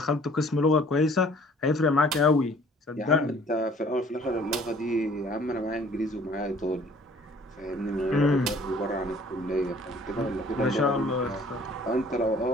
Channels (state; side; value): normal; both; correlation 0.55